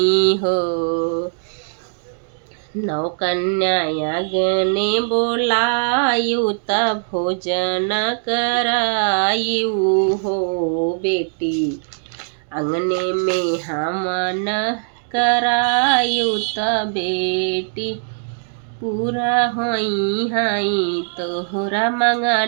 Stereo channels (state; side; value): silent; left; digital silence